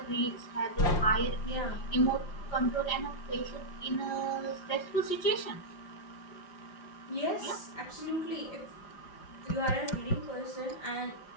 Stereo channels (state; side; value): late; right; 5.7 ms